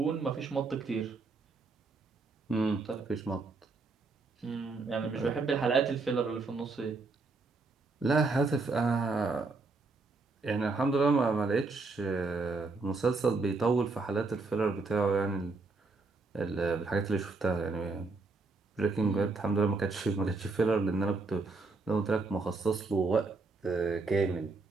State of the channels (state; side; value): quieter; left; 3.8 dB